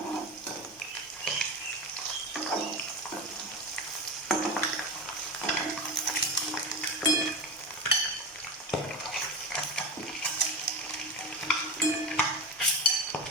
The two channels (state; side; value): normal; both; correlation 0.22